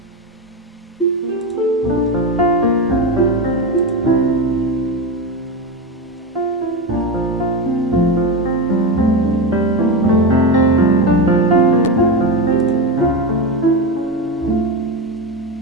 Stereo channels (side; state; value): both; normal; correlation 0.16